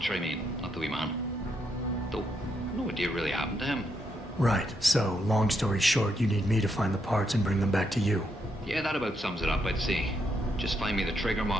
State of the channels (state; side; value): normal; both; correlation 0.79